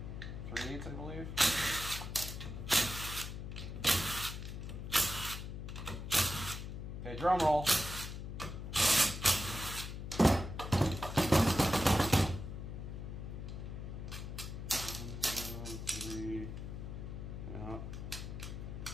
3/8, I believe. Okay, drum roll. One, two, three. Yeah.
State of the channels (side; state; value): left; noise; hum, 7 dB below the sound